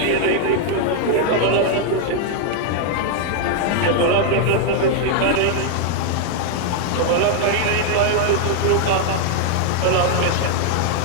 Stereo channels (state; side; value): different; both; correlation 0.00